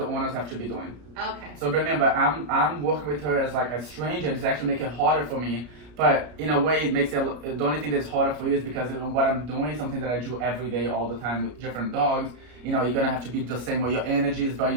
owners have to be doing. okay. So remember, I'm working with her as like a stranger, and it's actually making it harder for me. But in a way, it makes it the only thing that's harder for you is because what I'm doing is something that I do every day, all the time with different dogs. You're gonna have to be the same way. Your energy is very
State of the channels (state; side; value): late; left; 33 ms